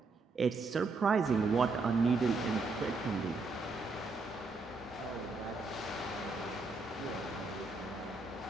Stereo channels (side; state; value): left; quieter; 3.7 dB